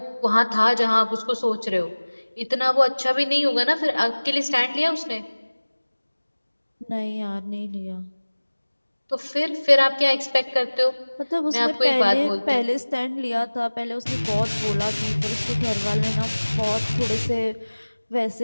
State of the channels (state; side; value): inverted; both; correlation -1.00